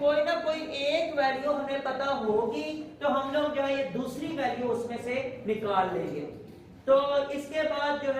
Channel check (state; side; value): identical; both; correlation 1.00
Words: ना कोई एक वैल्यू हमें पता होगी तो हम लोग जो है ये दूसरी वैल्यू उसमें से निकाल लेंगे। तो इसके बाद जो